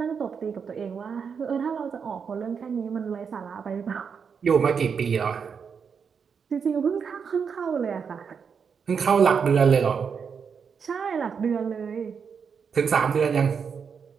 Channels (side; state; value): left; quieter; 6.4 dB